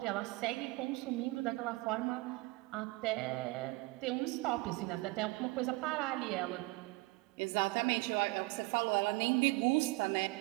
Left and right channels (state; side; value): quieter; left; 23.5 dB